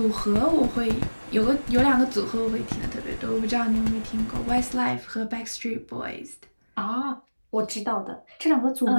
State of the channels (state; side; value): inverted; both; correlation -1.00